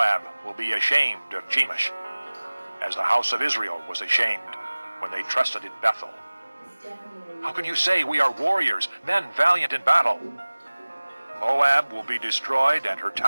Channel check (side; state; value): both; inverted; correlation -1.00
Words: will be ashamed of Chemosh, as the house of Israel was ashamed when they trusted in Bethel. How can you say we are warriors, men valiant in battle? Moab will be destroyed and her